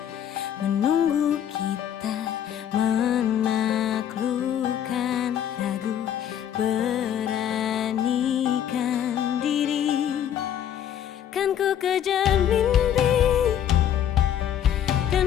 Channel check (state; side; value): quieter; right; 9.9 dB